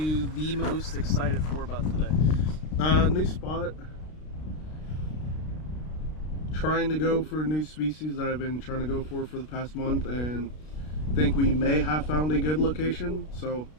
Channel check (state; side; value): late; right; 32 ms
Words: the most excited for about today? New spot. Trying to go for a new species that I've been trying to go for the past month, and think we may have found a good location, so